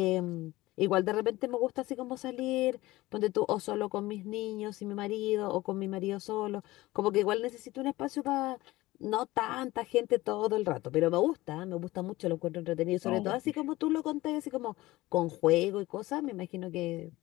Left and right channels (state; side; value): quieter; right; 18.6 dB